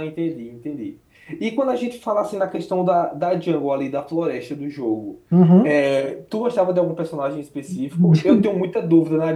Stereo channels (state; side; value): identical; both; correlation 1.00